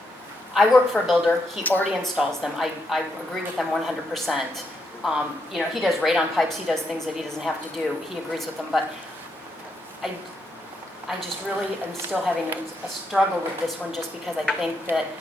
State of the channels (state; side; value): normal; both; correlation 0.80